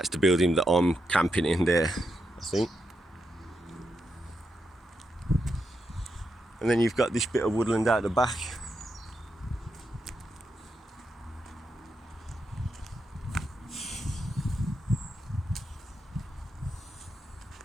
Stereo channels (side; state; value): both; normal; correlation 0.84